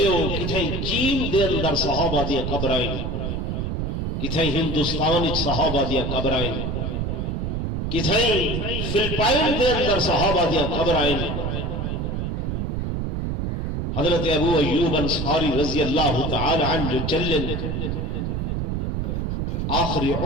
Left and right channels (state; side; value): noise; right; rumble, 1 dB below the sound